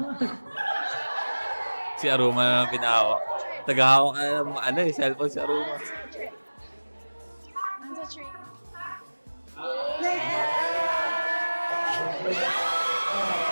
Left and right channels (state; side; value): inverted; both; correlation -1.00